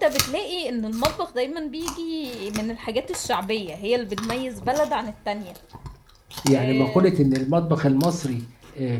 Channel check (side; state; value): both; identical; correlation 1.00